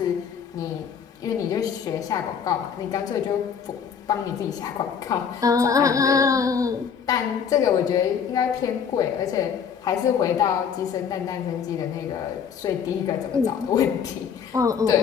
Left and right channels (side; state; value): right; quieter; 7.1 dB